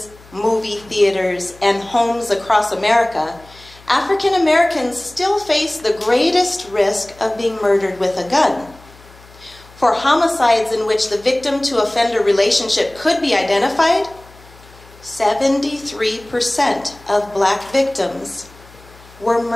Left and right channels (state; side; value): noise; left; hum, 24 dB below the sound